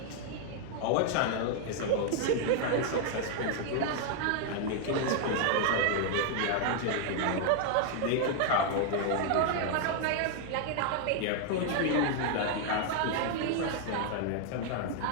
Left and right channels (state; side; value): different; both; correlation 0.00